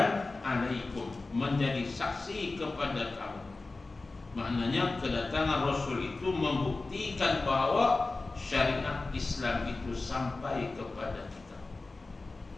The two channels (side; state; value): right; quieter; 3.5 dB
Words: alaikum, menjadi saksi kepada kamu. Maknanya kedatangan Rasul itu membuktikan bahawa syariat Islam itu sampai kepada kita.